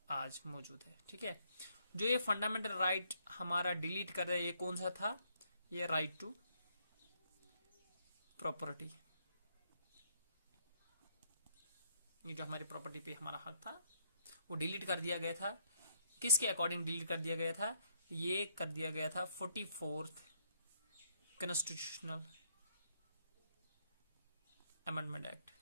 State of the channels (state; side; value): inverted; both; correlation -0.73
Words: आज मौजूद है। ठीक है, जो ये फंडामेंटल राइट हमारा डिलीट कर दिया, ये कौन सा था? ये राइट टू प्रॉपर्टी। ये जो हमारी प्रॉपर्टी पे हमारा हक था वो डिलीट कर दिया गया था। किसके अकॉर्डिंग डिलीट कर दिया गया था? ये कर दिया गया था 44th कॉन्स्टिट्यूशनल अमेंडमेंट एक्ट।